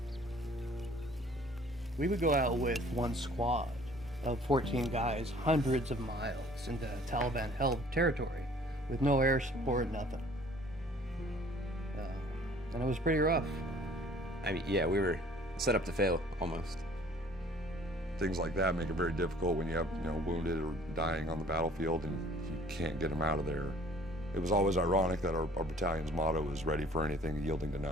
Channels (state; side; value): normal; both; correlation 0.53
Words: We would go out with one squad of 14 guys, hundreds of miles into Taliban-held territory with no air support, nothing. And it was pretty rough. I mean, yeah, we were set up to fail, almost. Things like that make it very difficult when you have, wounded or dying on the battlefield and you can't get them out of there. It was always ironic that our battalion's motto was ready for anything, yielding to